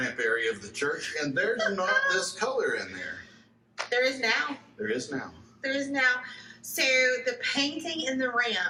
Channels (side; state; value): both; identical; correlation 1.00